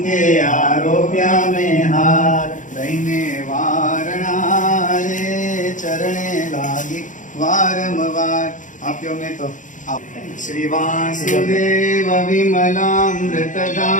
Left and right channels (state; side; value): late; right; 0.37 ms